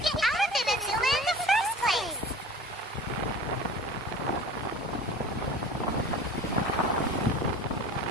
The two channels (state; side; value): normal; both; correlation 0.40